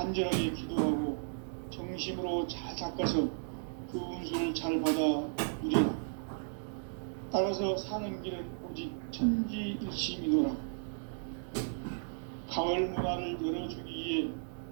기도하고 정심으로 잘 닦아서 그 운수를 잘 받아 누리라. 따라서 사는 길은 오직 천지일심이노라. 가을 문화를 열어주기 위해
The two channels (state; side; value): silent; left; digital silence